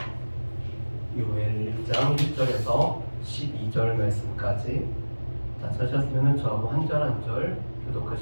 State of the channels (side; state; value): both; inverted; correlation -1.00